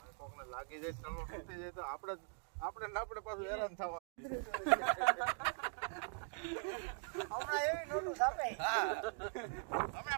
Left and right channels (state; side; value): silent; left; 50 dB below the other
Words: કોકને લાગી જાય ચલો તૂટી જાય તો આપણે પાછું હેરાન થવા હમણાં એવી નોટું છાપે હા